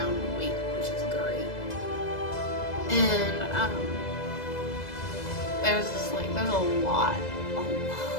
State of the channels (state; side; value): late; right; 2.0 ms